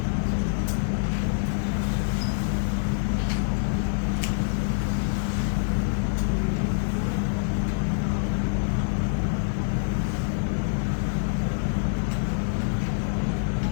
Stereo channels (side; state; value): right; silent; 61 dB below the other